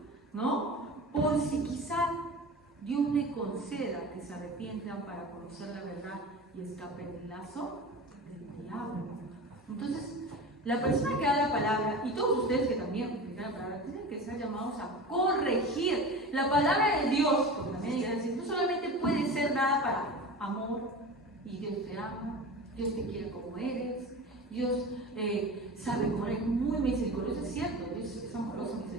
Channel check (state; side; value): normal; both; correlation 0.32